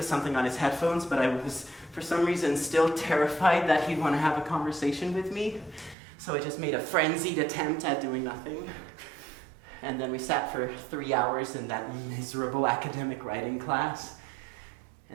something on his headphones, but I was, for some reason, still terrified that he'd want to have a conversation with me. So I just made a frenzied attempt at doing nothing. And then we sat for 3 hours in that miserable academic writing class.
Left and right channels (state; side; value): drops out; left; at 6.0 s